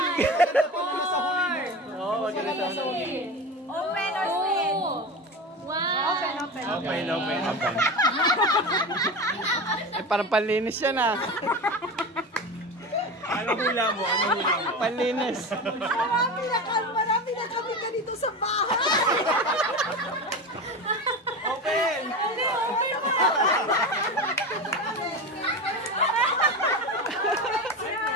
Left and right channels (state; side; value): normal; both; correlation 0.25